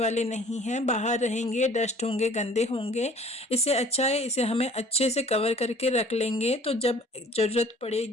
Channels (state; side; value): normal; both; correlation 0.51